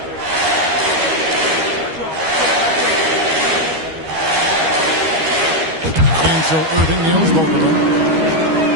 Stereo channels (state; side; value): late; left; 13 ms